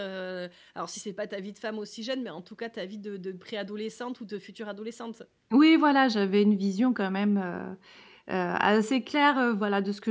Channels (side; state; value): both; identical; correlation 1.00